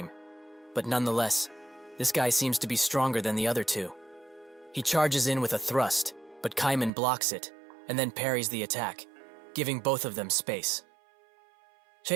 but nonetheless, this guy seems to be stronger than the other two. He charges in with a thrust, but Kaiman blocks it, and then parries the attack, giving both of them space.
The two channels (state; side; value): drops out; left; at 6.9 s